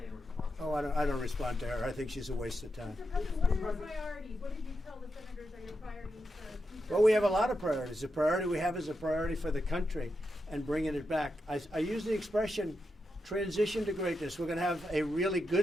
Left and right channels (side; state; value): both; normal; correlation 0.86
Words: in response. Oh, I don't respond to her. I think she's a waste of time. Mr. President, what are your priorities? What did you tell the senators are your priorities for future? Well, we have a lot of priorities. The priority we have is a priority for the country and bringing it back. I use the expression transition to greatness. We're going to have a really